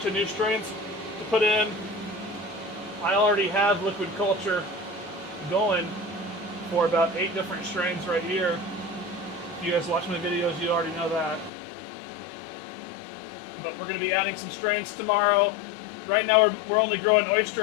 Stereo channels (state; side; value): drops out; right; at 11.5 s